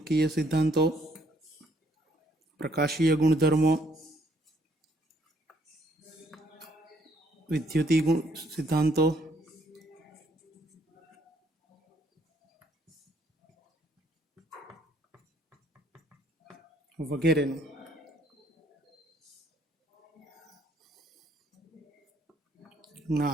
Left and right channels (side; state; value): both; normal; correlation 0.68